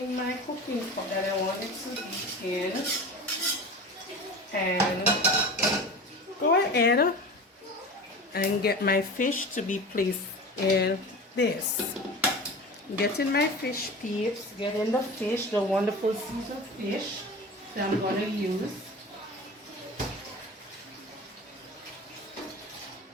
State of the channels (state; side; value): normal; both; correlation 0.33